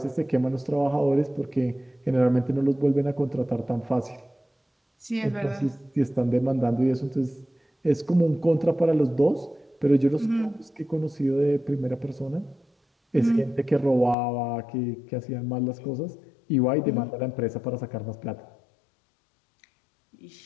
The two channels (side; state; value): right; drops out; at 14.2 s